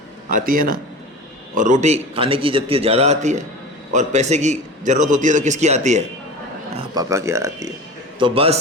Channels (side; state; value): both; normal; correlation 0.33